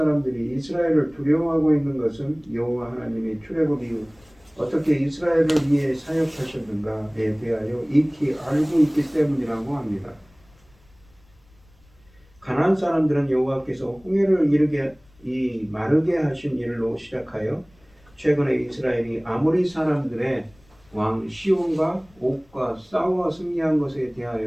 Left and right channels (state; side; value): noise; left; rumble, 30 dB below the sound